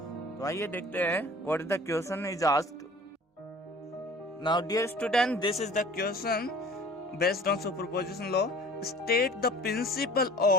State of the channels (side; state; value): both; normal; correlation 0.47